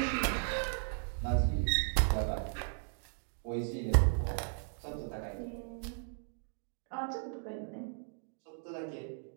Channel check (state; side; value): silent; left; digital silence